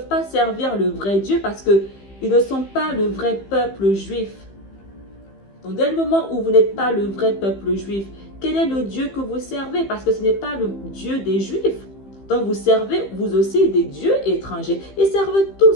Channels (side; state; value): right; late; 15 ms